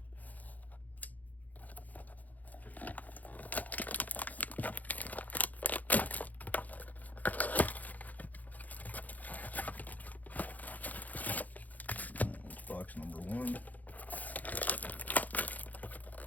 Box number 1.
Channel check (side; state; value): right; late; 0.080 ms